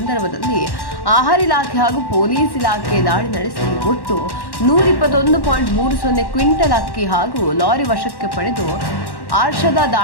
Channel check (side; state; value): right; late; 1.1 ms